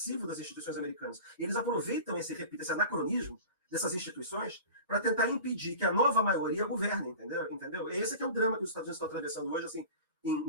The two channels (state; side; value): inverted; both; correlation -0.37